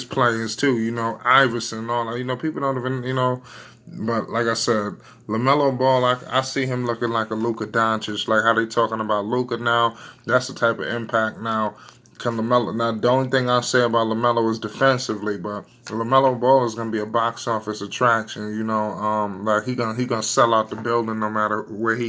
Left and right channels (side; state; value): both; identical; correlation 1.00